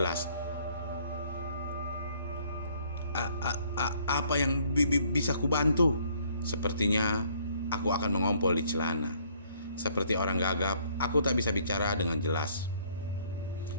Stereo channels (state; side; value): inverted; both; correlation -0.62